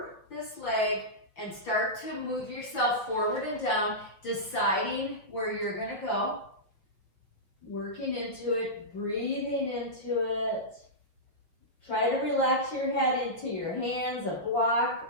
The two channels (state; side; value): late; right; 6.1 ms